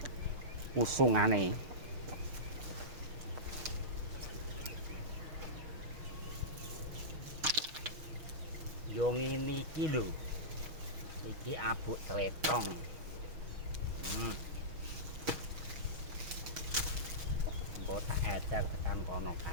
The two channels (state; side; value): late; left; 6.3 ms